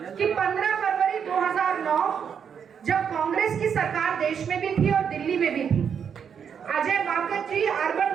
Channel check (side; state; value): left; quieter; 7.4 dB